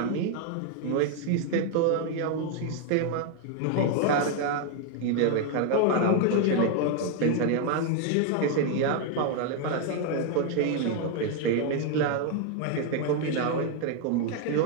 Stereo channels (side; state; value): both; different; correlation 0.00